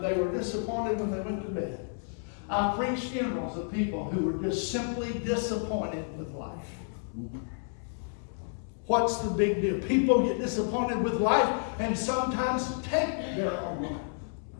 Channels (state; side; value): silent; right; digital silence